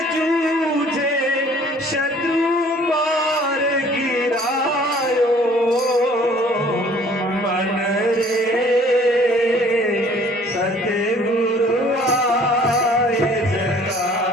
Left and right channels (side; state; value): both; normal; correlation 0.55